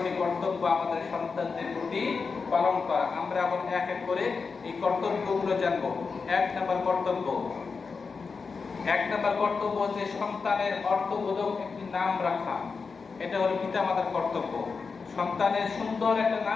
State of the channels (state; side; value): quieter; right; 4.9 dB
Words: কর্তব্য আমাদের সন্তানদের প্রতি পালন করা। আমরা এখন এক এক করে এই কর্তব্যগুলো জানব। এক নম্বর কর্তব্য হচ্ছে সন্তানের অর্থবোধক একটি নাম রাখা। এটা হলো পিতামাতার কর্তব্য। সন্তানের সুন্দর একটা